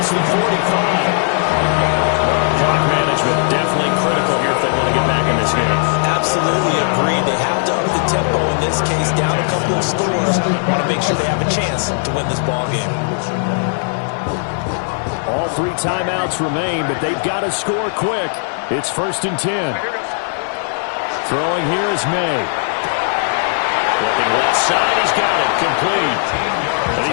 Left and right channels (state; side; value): silent; right; 63 dB below the other